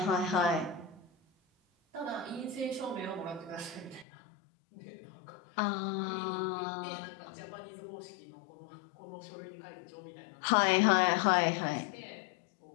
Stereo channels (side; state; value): right; drops out; at 4.0 s